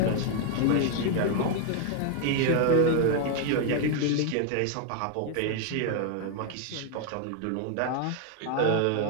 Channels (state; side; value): different; both; correlation 0.00